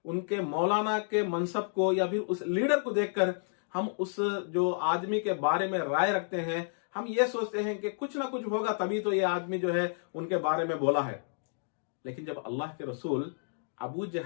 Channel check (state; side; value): silent; right; digital silence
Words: उनके मौलाना के मनसब को या फिर उस लीडर को देखकर हम उस जो आदमी के बारे में राय रखते हैं। हम ये सोचते हैं कि कुछ ना कुछ होगा तभी तो ये आदमी जो है उनके बारे में बोला है। लेकिन जब अल्लाह के रसूल अबू